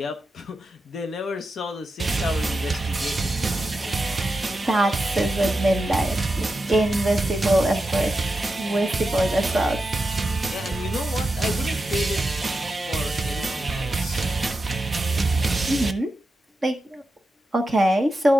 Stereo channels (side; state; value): both; normal; correlation 0.89